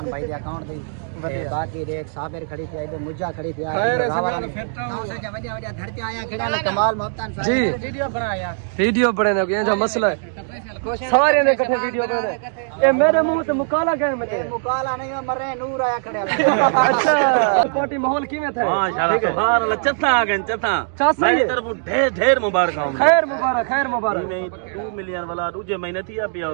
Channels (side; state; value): left; silent; digital silence